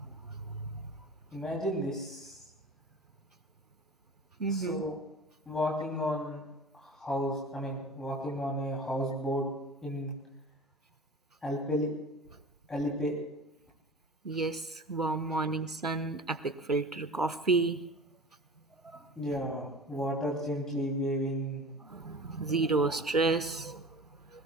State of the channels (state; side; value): normal; both; correlation 0.37